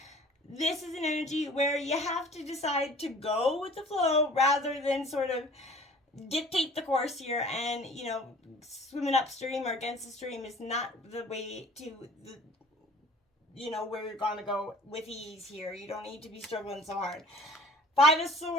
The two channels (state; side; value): normal; both; correlation 0.49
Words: this is an energy where you have to decide to go with the flow rather than sort of dictate the course here. And swimming upstream or against the stream is not the way to where you're gonna go with ease here. You don't need to be struggling so hard. Five of